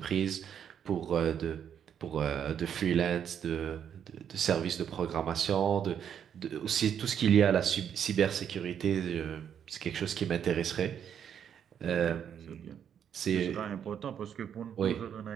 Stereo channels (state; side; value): quieter; left; 8.6 dB